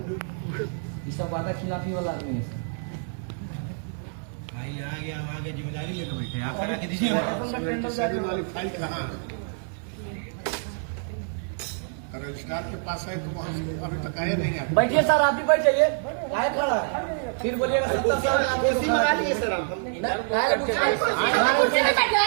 सब वादा खिलाफी वाला आदमी है। भाई आगे हम आगे जिम्मेदारी लेकर बैठे, आप करा के दीजिए। सारी वाली फाइल कहाँ है? रजिस्ट्रार के पास है तो वहाँ से अभी तक आए नहीं है। बैठिए सर, आप भी बैठ जाइए। आए खड़ा है। फिर बोलिएगा 70 साल कुर्सी मंगा लीजिए सर आप।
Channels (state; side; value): silent; left; 61 dB below the other